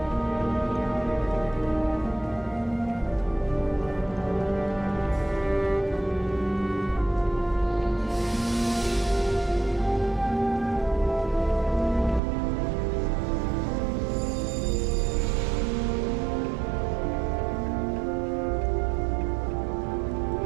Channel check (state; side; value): drops out; left; at 12.2 s